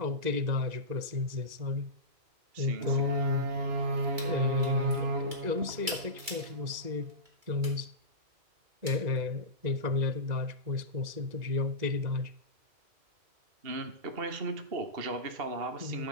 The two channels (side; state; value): left; late; 2.2 ms